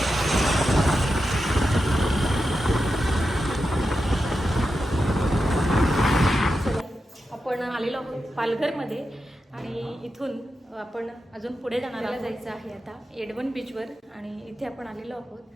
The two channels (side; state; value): both; normal; correlation 0.89